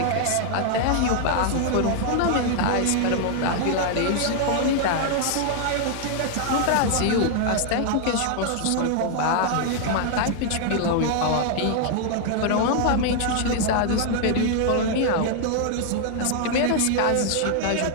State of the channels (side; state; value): both; different; correlation 0.00